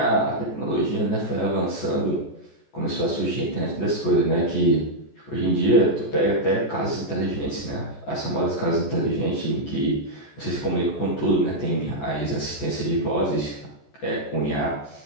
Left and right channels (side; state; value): right; late; 14 ms